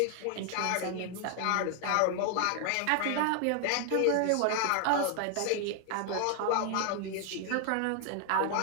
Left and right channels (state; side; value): different; both; correlation 0.00